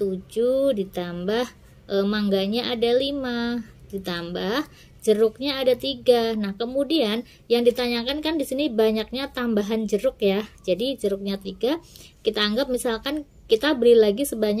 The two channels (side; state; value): both; identical; correlation 1.00